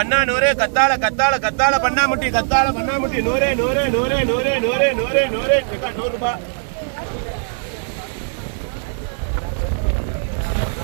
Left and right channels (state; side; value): silent; left; digital silence